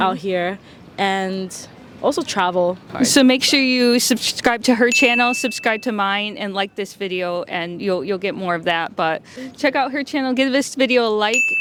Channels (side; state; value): both; identical; correlation 1.00